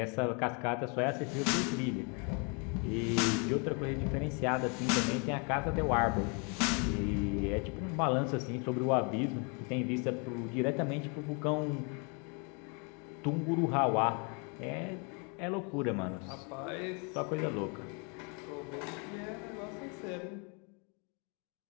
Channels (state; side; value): quieter; right; 34.7 dB